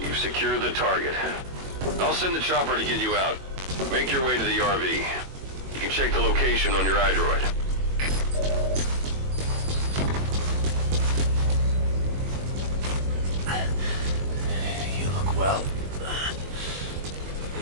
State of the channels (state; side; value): late; left; 21 ms